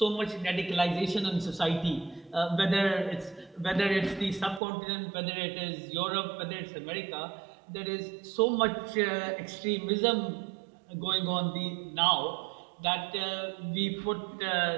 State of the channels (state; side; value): drops out; left; at 4.6 s